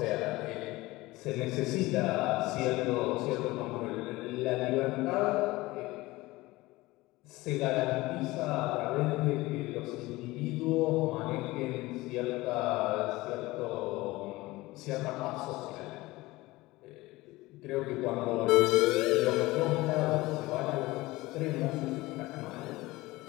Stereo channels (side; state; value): right; quieter; 19.9 dB